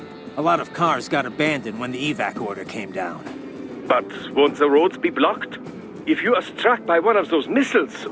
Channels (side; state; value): both; identical; correlation 1.00